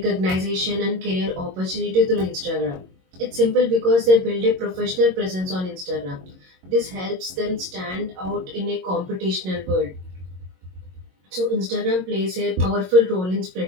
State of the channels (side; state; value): left; late; 22 ms